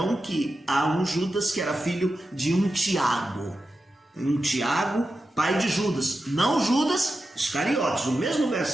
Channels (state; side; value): normal; both; correlation 0.91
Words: que há um Judas que era filho de um Tiago, pai de Judas, não Judas Iscariotes. O mesmo